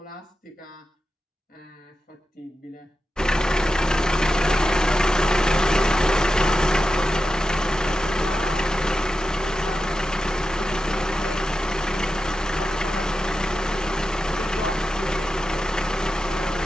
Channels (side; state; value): both; normal; correlation 0.91